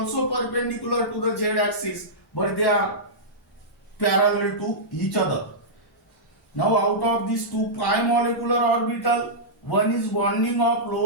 perpendicular to the z axis, but they are parallel to each other. Now out of these 2 pi molecular orbital, one is bonding of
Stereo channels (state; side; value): normal; both; correlation -0.13